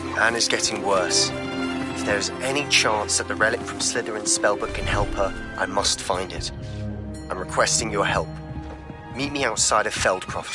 Anne is getting worse. If there is any chance that the relic from Slytherin's spellbook can help her, I must find it. I'm requesting your help. Meet me outside of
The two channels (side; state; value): both; identical; correlation 1.00